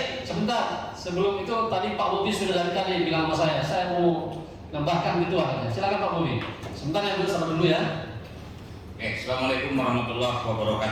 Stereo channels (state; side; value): identical; both; correlation 1.00